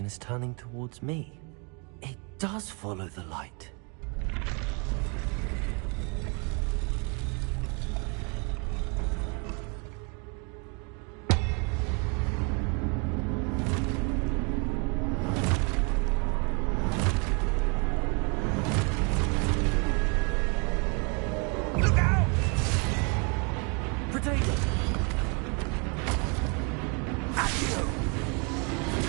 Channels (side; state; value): left; quieter; 34.2 dB